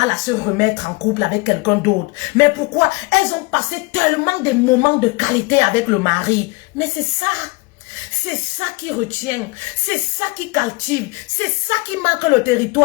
à se remettre en couple avec quelqu'un d'autre. Mais pourquoi? Elles ont passé tellement de moments de qualité avec le mari. Mais c'est ça qui retient, c'est ça qui captive, c'est ça qui marque le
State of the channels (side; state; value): right; quieter; 25.9 dB